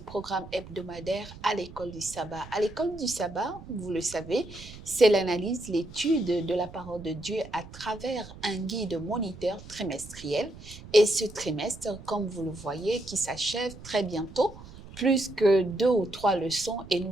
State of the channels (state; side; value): noise; right; rumble, 16 dB below the sound